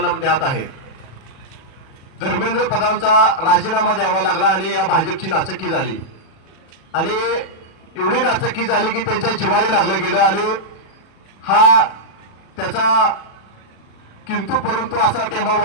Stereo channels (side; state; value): right; late; 37 ms